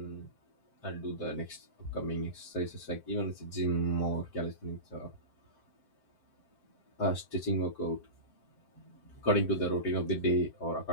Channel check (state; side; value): late; right; 7.7 ms